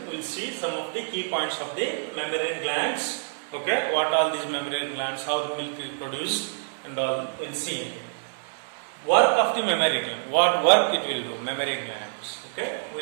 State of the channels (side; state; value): left; silent; 60 dB below the other